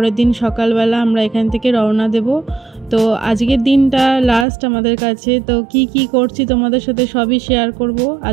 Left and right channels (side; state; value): left; drops out; at 4.5 s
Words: দিন সকালবেলা আমরা এখান থেকে রওনা দেব। তো আজকের দিনটা লাস্ট আমাদের কাছে। তো কি করছি তোমাদের সাথে সবই শেয়ার করব